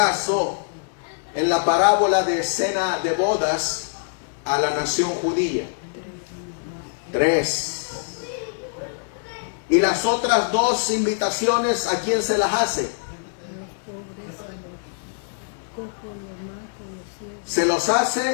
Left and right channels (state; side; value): silent; right; digital silence